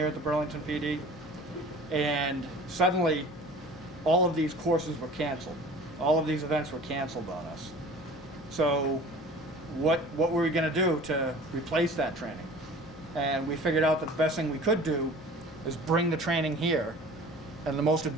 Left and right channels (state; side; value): normal; both; correlation 0.43